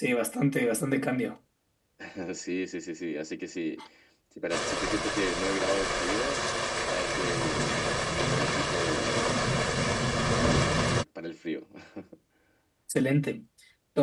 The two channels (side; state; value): both; identical; correlation 1.00